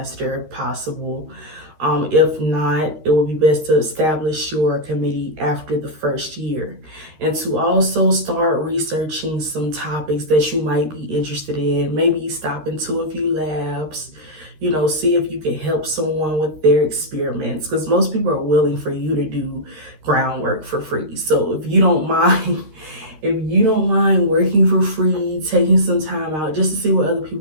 if possible. If not, it would be best to establish your committee after the first year, and to also start researching some topics that you might be interested in. Maybe stop into a few labs, see if you can help someone with their experiments, because most people are willing for you to do groundwork for free. So if you don't mind, working for free, taking some time out just to see what other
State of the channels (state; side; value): late; left; 13 ms